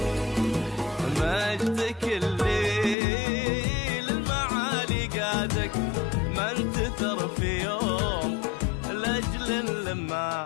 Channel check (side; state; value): right; drops out; at 3.0 s